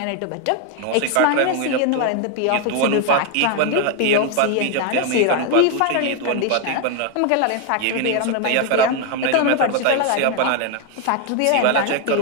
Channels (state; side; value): different; both; correlation 0.01